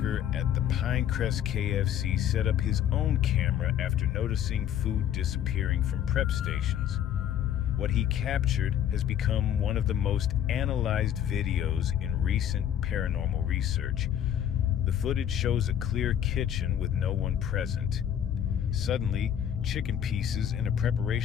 at the Pinecrest KFC set up his own camera after noticing food disappearing from prep stations. What he captured has become one of the most analyzed videos in recent paranormal research. The footage shows a clear kitchen with no one present. Suddenly, chicken pieces in a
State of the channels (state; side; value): quieter; right; 10.0 dB